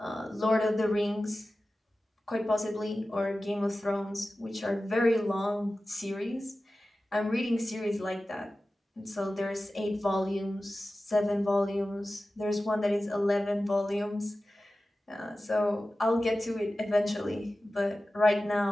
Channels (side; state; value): both; normal; correlation 0.95